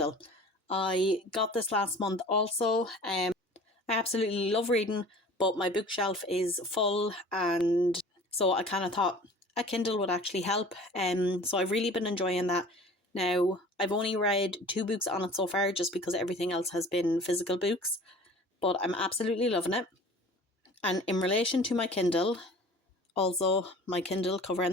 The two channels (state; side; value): normal; both; correlation 0.44